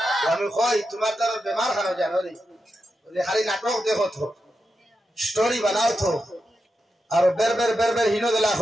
আমি কই তোমার দ্বারা বেমার খানো জানো রে খালি নাটক দেখো তো স্টোরি বানাও তো আর বের হিনো দিলা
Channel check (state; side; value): normal; both; correlation 0.88